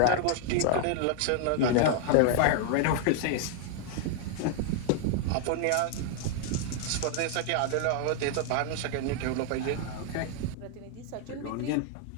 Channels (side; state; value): both; different; correlation 0.00